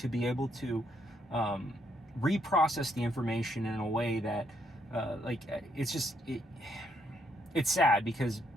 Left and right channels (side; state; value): both; normal; correlation 0.74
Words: be able to reprocess the information in a way that it's sad, because